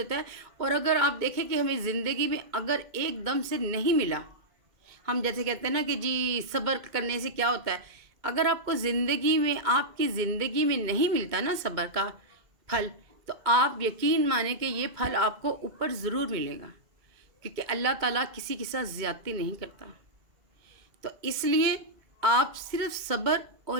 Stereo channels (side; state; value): left; late; 2.1 ms